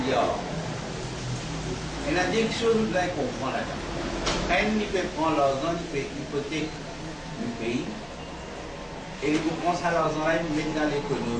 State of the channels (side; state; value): both; identical; correlation 1.00